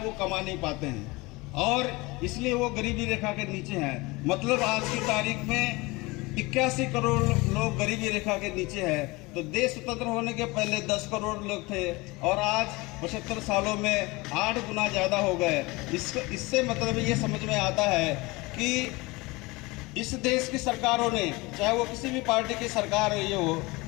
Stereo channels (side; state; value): right; quieter; 23.5 dB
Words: कमा नहीं पाते हैं और इसलिए वो गरीबी रेखा के नीचे हैं। मतलब आज की तारीख में 81 करोड़ लोग गरीबी रेखा के नीचे हैं। तो देश स्वतंत्र होने के पहले 10 करोड़ लोग थे और आज 75 सालों में 8 गुना ज़्यादा हो गए। इससे मतलब ये समझ में आता है कि इस देश की सरकारों ने, चाहे वो किसी भी पार्टी की सरकार रही हो,